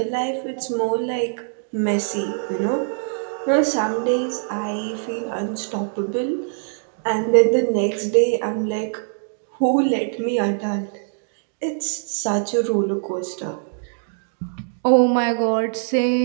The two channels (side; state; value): left; silent; digital silence